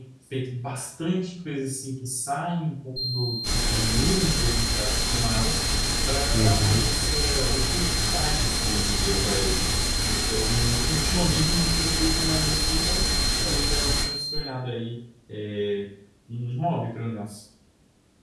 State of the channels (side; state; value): both; identical; correlation 1.00